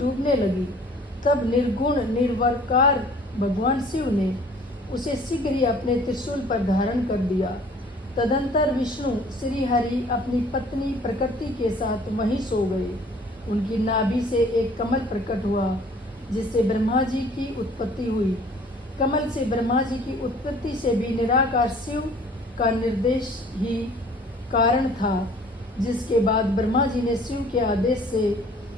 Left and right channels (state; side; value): normal; both; correlation 0.53